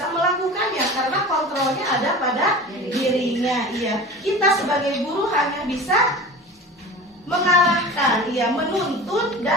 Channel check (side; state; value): both; normal; correlation 0.35